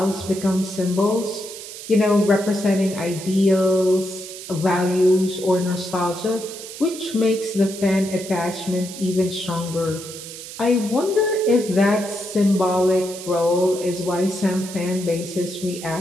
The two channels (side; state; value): right; noise; hiss, 12 dB below the sound